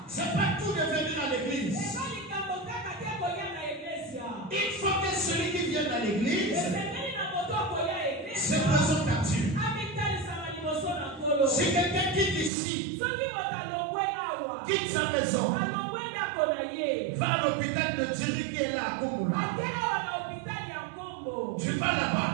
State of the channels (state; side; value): drops out; left; at 12.5 s